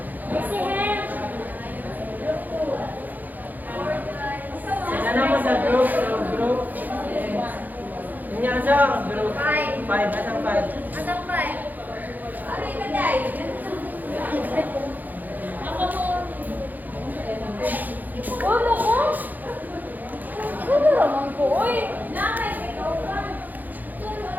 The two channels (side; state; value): left; late; 0.084 ms